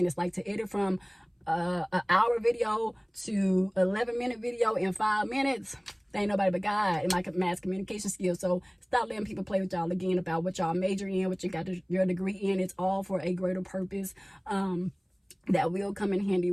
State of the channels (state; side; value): identical; both; correlation 1.00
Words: Like, to edit from an hour video to 11-minute video in 5 minutes, there ain't nobody but God and my mass communication skills. So stop letting people play with y'all again about what y'all major in, what you got your degree in. It's all for a greater purpose that will come in handy